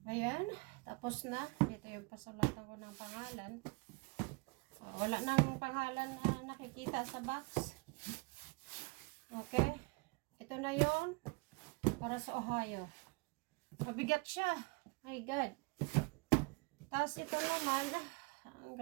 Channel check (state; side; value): quieter; left; 29.8 dB